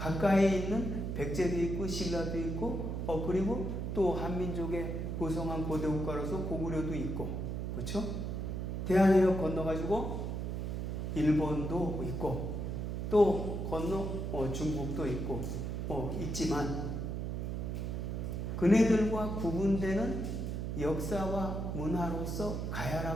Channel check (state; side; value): noise; right; hum, 3 dB below the sound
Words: 있는 백제도 있고 신라도 있고 그리고 또 한민족의 고성한 고대 국가로서 고구려도 있고 그렇죠? 대한해협 건너가지고 일본도 있고 또 건너 중국도 있고 있지만 그네들과 구분되는 역사와 문화로서